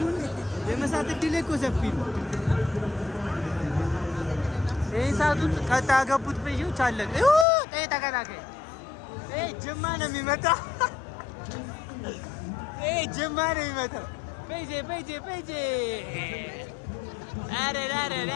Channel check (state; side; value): drops out; right; at 7.5 s